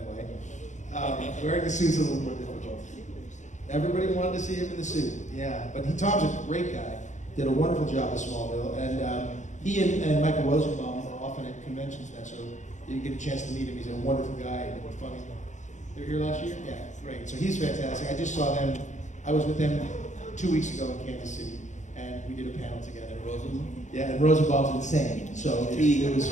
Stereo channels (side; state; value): right; late; 0.35 ms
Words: way. Wearing the suit's a little more difficult. Everybody wanted to see him in the suit, yeah. But Tom's a great guy, did a wonderful job at Smallville, and he and Michael Rosenbaum are often at conventions now, so you get a chance to meet him. He's a wonderful guy and funny. They were here last year? Yeah, great. So he's fantastic. I just saw them, I was with them 2 weeks ago in Kansas City, and and we did a panel together. Rosenbaum? Yeah, and Rosenbaum's insane, so it was